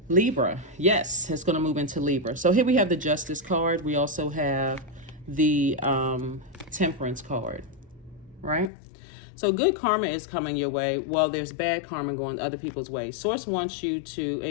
Libra. Yes, it's going to move into Libra. So here we have the Justice card. We also have the Temperance card, right? So good karma is coming your way, while there's bad karma going other people's way. Source wants you to,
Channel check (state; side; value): drops out; right; at 8.7 s